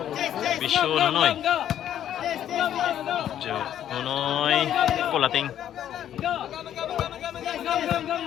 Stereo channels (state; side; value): quieter; right; 10.8 dB